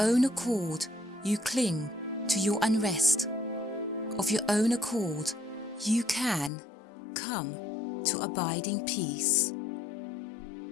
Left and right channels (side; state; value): right; drops out; at 6.5 s